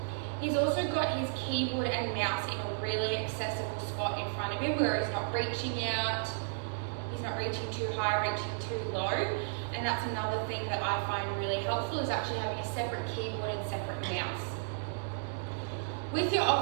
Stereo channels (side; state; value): left; silent; 56 dB below the other